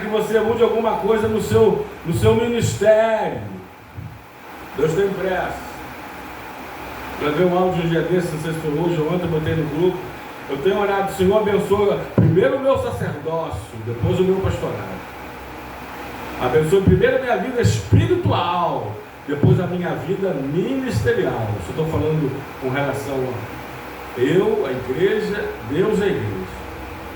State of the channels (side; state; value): both; identical; correlation 1.00